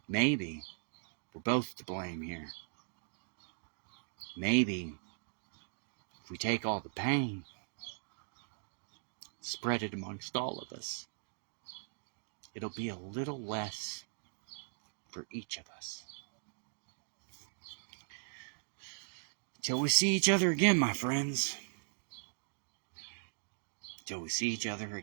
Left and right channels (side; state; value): left; silent; digital silence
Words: Maybe we're both to blame here. Maybe if we take all the pain, spread it amongst all of us, it'll be a little less for each of us. Till we see each other again, my friends. Till we see each other